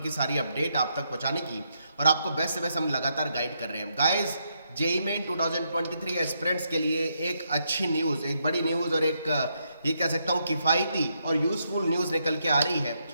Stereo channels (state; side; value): inverted; both; correlation -0.79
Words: सारी अपडेट आप तक पहुंचाने की और आपको बेस्ट से बेस्ट हम लगातार गाइड कर रहे हैं। गाइस, जेईई मेन 2023 एस्पिरेंट्स के लिए एक अच्छी न्यूज़, एक बड़ी न्यूज़ और एक ये कह सकता हूँ किफ़ायती और यूज़फुल न्यूज़ निकल के आ रही है